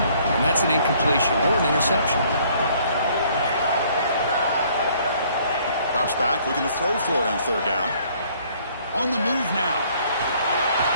and that's an incompletion or an interception. Drops back, looking to throw for it on third down. On the move now.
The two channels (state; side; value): inverted; both; correlation -0.61